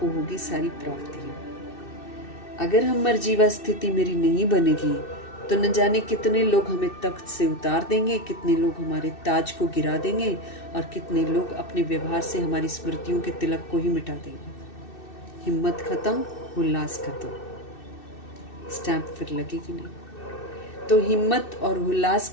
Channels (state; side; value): late; right; 2.6 ms